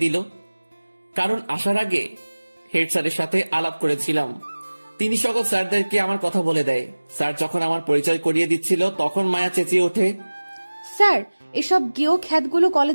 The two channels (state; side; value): inverted; both; correlation -1.00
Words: দিল। কারণ আসার আগে হেড স্যারের সাথে আলাপ করেছিলাম। তিনি সকল স্যারদেরকে আমার কথা বলে দেয়। স্যার যখন আমার পরিচয় করিয়ে দিচ্ছিল তখন মায়া চেঁচিয়ে ওঠে, স্যার, এসব গেও খ্যাতগুলো